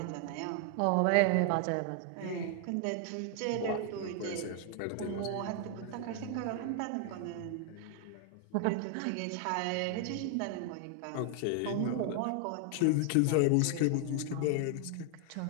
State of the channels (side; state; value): both; different; correlation 0.00